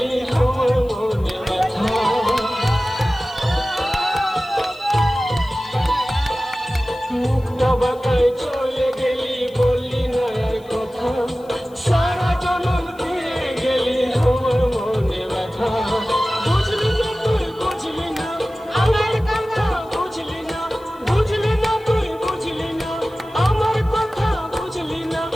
আমার মনে ব্যথা। মুক্তা বাতায় চলে গেলি, বললি না আর কথা, সারা জনম দিয়ে গেলি আমার মনে ব্যথা। বুঝলি না তুই, বুঝলি না আমার কথা, বুঝলি না, বুঝলি না তুই, বুঝলি না আমার কথা, বুঝলি না।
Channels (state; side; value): noise; left; hiss, 29 dB below the sound